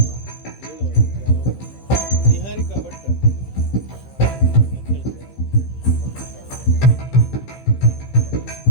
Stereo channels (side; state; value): right; late; 15 ms